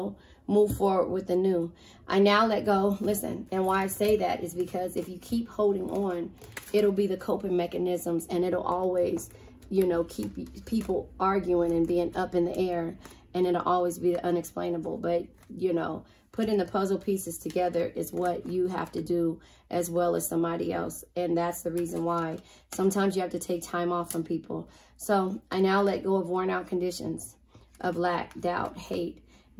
move forward with the new. I now let go. Listen, and why I say that is because if you keep holding on, it'll be the coping mechanisms, and it'll always, you know, keep people arguing and being up in the air, and it'll always be the unexplainable. But, you know, putting the puzzle pieces together is what you have to do as well as somebody else. And that's the reason why sometimes you have to take time off from people. So I now let go of worn out conditions of lack, doubt, hate,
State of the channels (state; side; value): identical; both; correlation 1.00